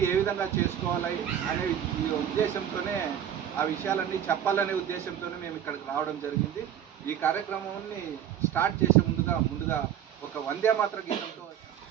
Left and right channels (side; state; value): left; quieter; 9.8 dB